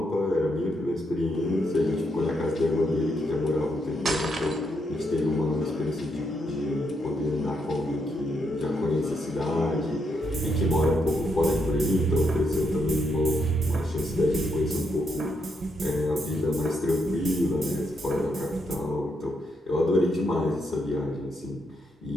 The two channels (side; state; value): both; normal; correlation 0.79